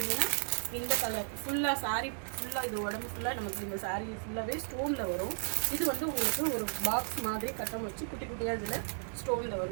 இந்த கலர் ஃபுல்லாக சாரீ ஃபுல்லாக, இது உடம்பு ஃபுல்லாக நமக்கு இந்த சாரீ ஃபுல்லாகவே ஸ்டோனில் வரும். இது வந்து உங்களுக்கு ஒரு பாக்ஸ் மாதிரி கட்டம் வச்சு குட்டி குட்டியாக இதில் ஸ்டோனில்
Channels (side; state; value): left; silent; 55 dB below the other